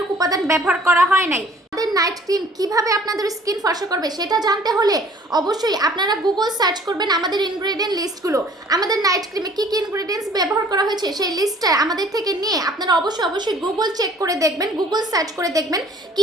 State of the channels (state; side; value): normal; both; correlation 0.53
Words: উপাদান ব্যবহার করা হয় নাই। আমাদের নাইট ক্রিম কিভাবে আপনাদের স্কিন ফর্সা করবে সেটা জানতে হলে অবশ্যই আপনারা গুগল সার্চ করবেন আমাদের ইনগ্রেডিয়েন্ট লিস্টগুলো। আমাদের নাইট ক্রিমে কি কি ইনগ্রেডিয়েন্টস ব্যবহার করা হয়েছে সেই লিস্টটা আমাদের থেকে নিয়ে আপনারা অবশ্যই গুগল চেক করে দেখবেন, গুগল সার্চ করে দেখবেন